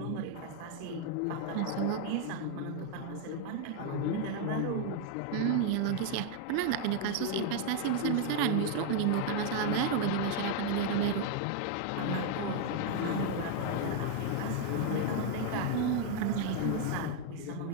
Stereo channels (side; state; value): both; different; correlation 0.00